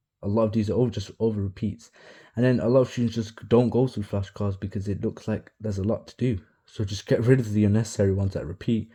a lot of these are just over repeats. And then a lot of students just don't go through flashcards because it looks like there's a lot to do. So just get rid of the unnecessary ones that repeat,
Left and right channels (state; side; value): identical; both; correlation 1.00